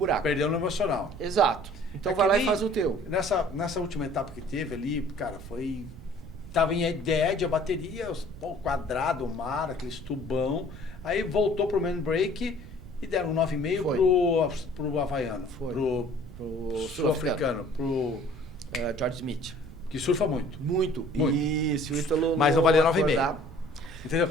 Perdeu no emocional. Exato. Então vai lá e faz o teu. Nessa última etapa que teve ali, cara, tava em ideia a bateria, o quadrado, o mar, aquele tubão. Aí voltou pro main break e deram 9,5 pro havaiano. Pro sul-africano. Pro George Smith. Que surfa muito. Muito. Isso, o Ítalo. Mas não valia 9,5. Entendeu?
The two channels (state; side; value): noise; right; rumble, 15 dB below the sound